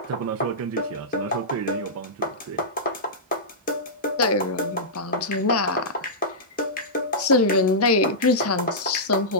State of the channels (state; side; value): normal; both; correlation -0.13